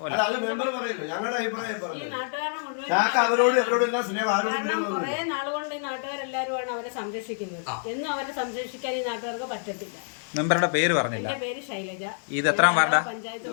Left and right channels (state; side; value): silent; right; digital silence